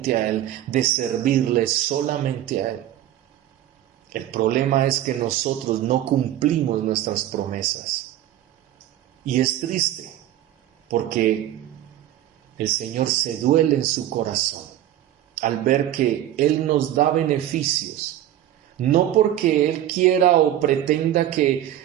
a Él, de servirle solamente a Él. El problema es que nosotros no cumplimos nuestras promesas. Y es triste, porque el Señor se duele en su corazón al ver que Él nos da beneficios, no porque Él quiera o pretenda que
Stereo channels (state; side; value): quieter; left; 12.5 dB